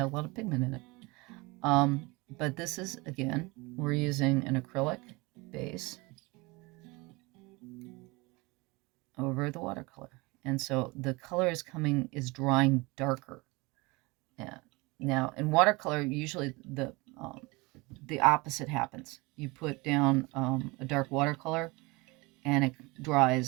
a lot of pigment in it. But this is, again, we're using an acrylic base over the watercolor, and so the color is drying darker. Yeah. Now in watercolor, usually the opposite happens. You put down a dark watercolor, and it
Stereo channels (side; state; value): left; quieter; 25.0 dB